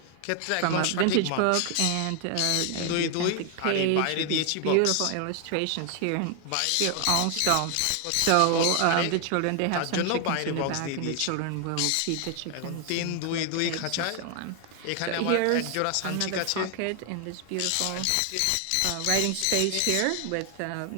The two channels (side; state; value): both; different; correlation 0.00